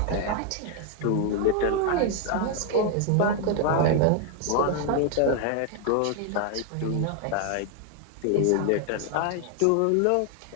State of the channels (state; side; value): different; both; correlation 0.00